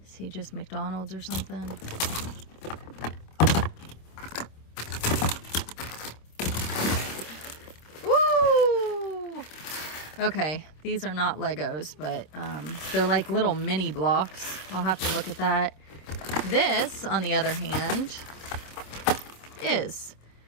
Is he just McDonald's or something? Woo! Okay, these are not Legos, but they're like little mini blocks. I'll have to look at that. This, on the other hand, is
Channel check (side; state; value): right; late; 26 ms